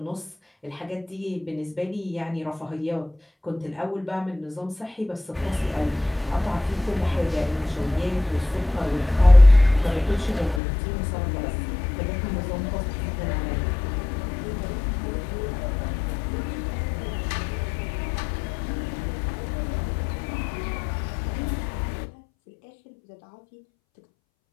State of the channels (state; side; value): drops out; right; at 10.6 s